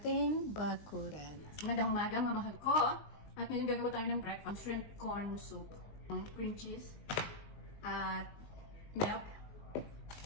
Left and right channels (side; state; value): right; late; 19 ms